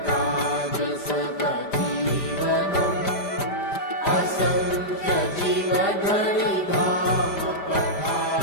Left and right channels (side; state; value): right; late; 5.0 ms